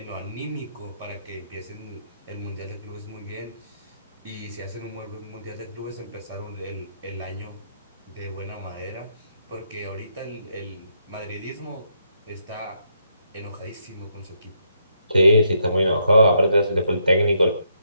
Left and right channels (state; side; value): inverted; both; correlation -0.76